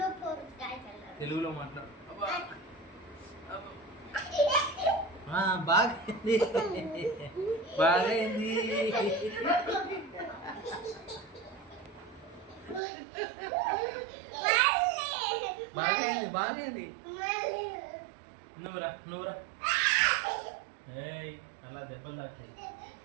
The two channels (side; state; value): left; drops out; at 12.8 s